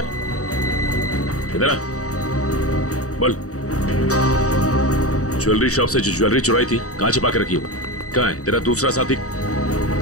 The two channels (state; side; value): late; right; 0.66 ms